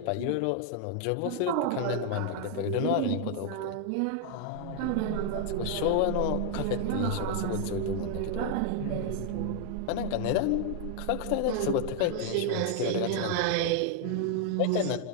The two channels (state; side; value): different; both; correlation 0.00